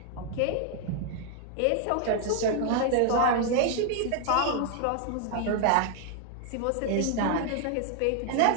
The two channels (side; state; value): both; different; correlation 0.00